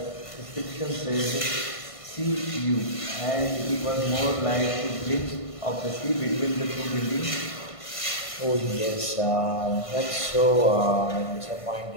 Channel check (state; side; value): late; right; 1.5 ms